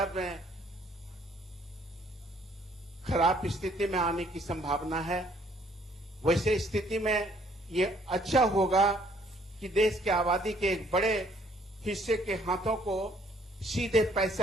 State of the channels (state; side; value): normal; both; correlation 0.63